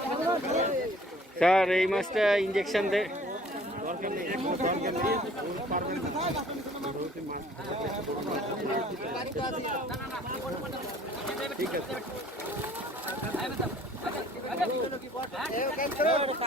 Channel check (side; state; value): both; normal; correlation 0.54